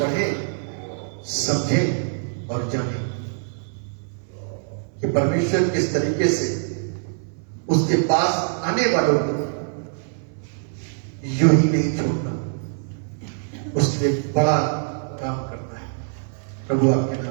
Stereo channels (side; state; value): left; silent; 61 dB below the other